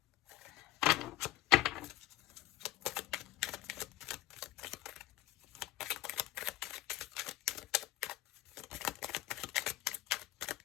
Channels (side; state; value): right; quieter; 15.9 dB